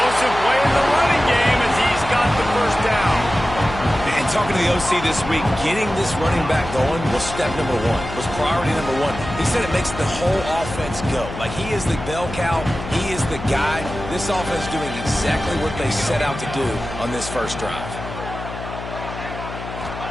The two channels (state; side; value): noise; left; hum, 10 dB below the sound